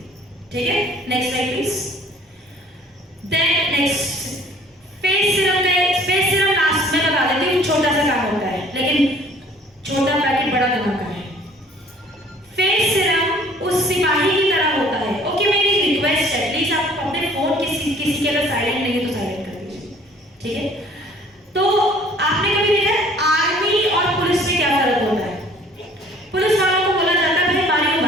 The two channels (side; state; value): both; normal; correlation 0.54